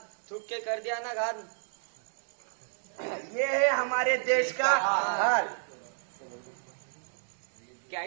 थूक के कर दिया ना घात। ये है हमारे देश का हाल। क्या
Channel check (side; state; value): left; silent; digital silence